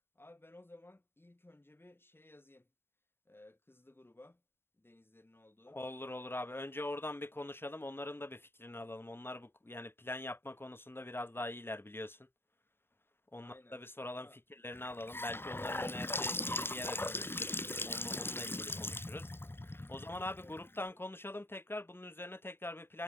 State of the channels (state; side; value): late; right; 0.11 ms